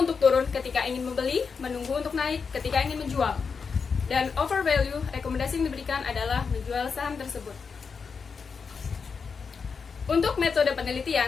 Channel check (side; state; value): right; quieter; 5.5 dB